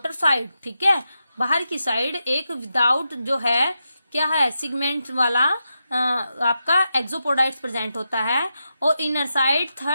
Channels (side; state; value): both; inverted; correlation -0.88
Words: साइड, ठीक है, बाहर की साइड एक विदाउट जो है क्या है सिगमेंट वाला आपका एक्सोपोडाइट्स प्रेजेंट होता है, और इनर साइड